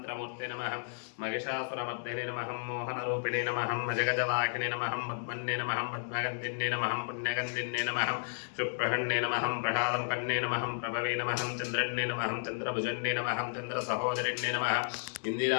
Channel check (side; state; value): right; silent; digital silence